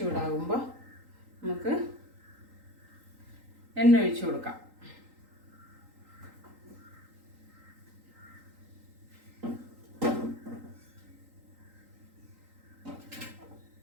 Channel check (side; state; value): left; late; 3.8 ms